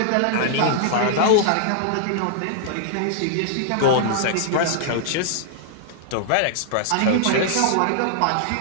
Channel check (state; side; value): different; both; correlation -0.01